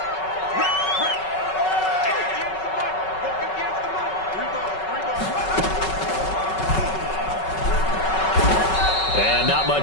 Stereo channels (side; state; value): right; late; 5.3 ms